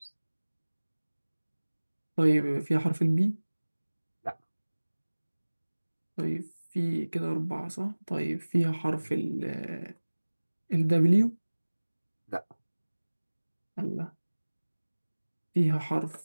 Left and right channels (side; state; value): both; inverted; correlation -1.00